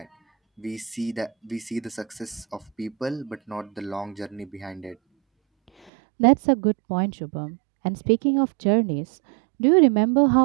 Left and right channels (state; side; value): drops out; left; at 5.9 s